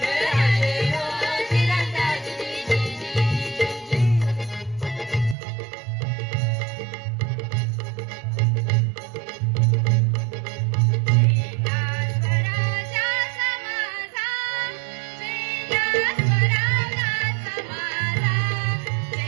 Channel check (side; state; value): left; drops out; at 5.4 s